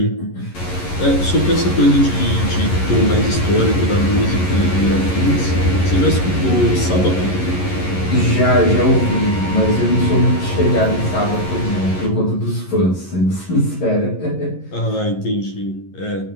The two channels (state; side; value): late; right; 11 ms